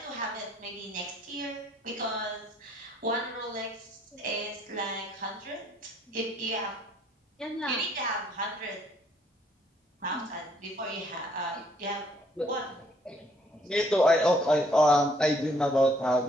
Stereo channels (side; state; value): both; normal; correlation 0.65